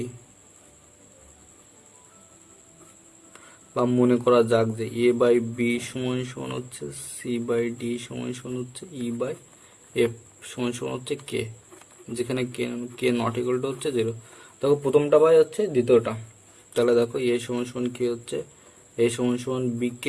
মনে করা যাক যে a বাই বি সমান সমান হচ্ছে সি বাই ডি সমান সমান হচ্ছে ই বাই এফ সমান সমান হচ্ছে কে, যেখানে কে নট ইকুয়াল টু হচ্ছে 0। দেখো প্রথমটা বাই হচ্ছে দ্বিতীয়টা। তাহলে দেখো এ সমান সমান কি হচ্ছে এ সমান সমান বি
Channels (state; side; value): identical; both; correlation 1.00